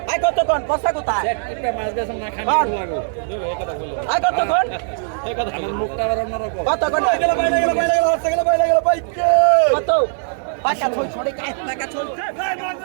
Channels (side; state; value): left; silent; 66 dB below the other